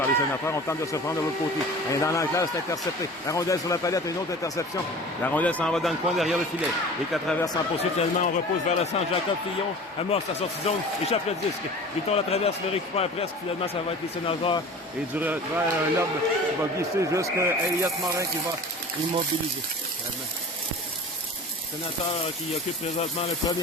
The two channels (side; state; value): both; normal; correlation 0.39